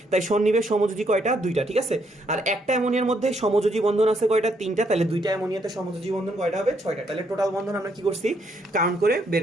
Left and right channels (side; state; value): both; normal; correlation 0.73